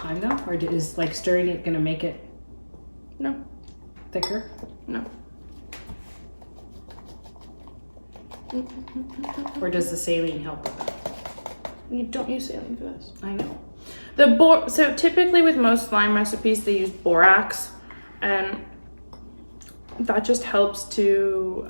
though? Or is like stirring it gonna make it No, thicker? no. Or does the saline help with that? You don't use saline for this. I know. So typically with most slime recipes, they use borax, and that just helps to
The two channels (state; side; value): inverted; both; correlation -1.00